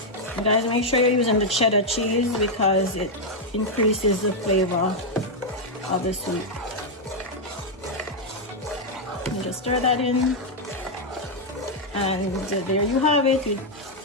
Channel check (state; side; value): normal; both; correlation -0.01